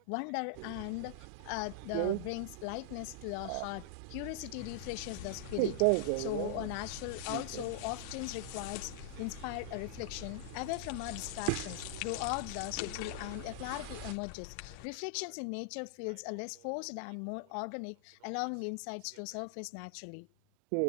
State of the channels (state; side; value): different; both; correlation -0.01